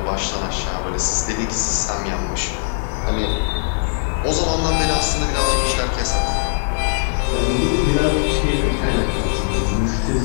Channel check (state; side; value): silent; right; digital silence